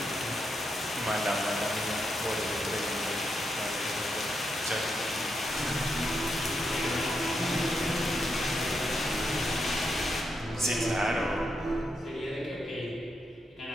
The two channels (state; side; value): normal; both; correlation 0.83